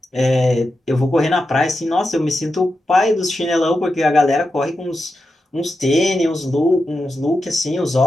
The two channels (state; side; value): normal; both; correlation 0.89